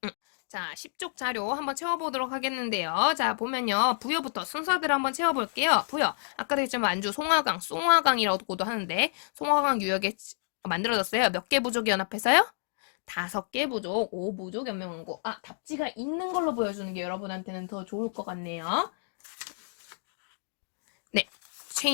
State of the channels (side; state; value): right; silent; digital silence